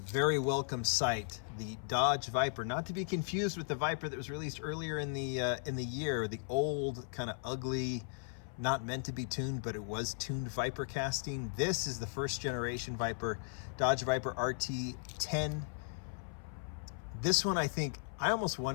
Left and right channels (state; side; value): silent; right; 53 dB below the other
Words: welcome sight, the Dodge Viper, not to be confused with the Viper that was released earlier in the year, the old kind of ugly, not meant to be tuned, but it was tuned Viper casting. This is the first generation Viper, Dodge Viper RT10. This one, I think, I almost